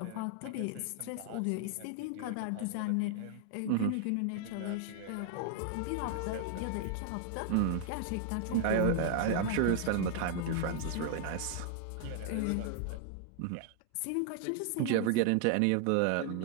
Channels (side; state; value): both; different; correlation 0.00